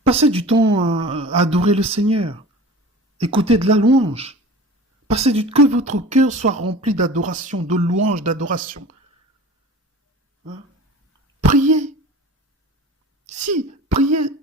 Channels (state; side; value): normal; both; correlation 0.38